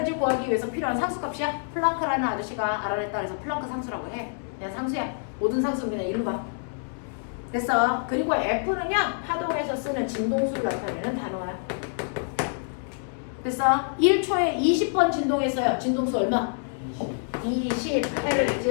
구하기 위해서 필요한 상수값이야. 플랑크라는 아저씨가 알아냈다 그래서 플랑크 상수라고 해. 그냥 상수야. 모든 상수는 그냥 일로 봐. 됐어? 그리고 F는요, 파동에서 쓰는 진동수를 나타내는 단어야. 됐어? 1초에 20번 진동했어요. 진동수 얼마?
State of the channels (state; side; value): silent; right; 60 dB below the other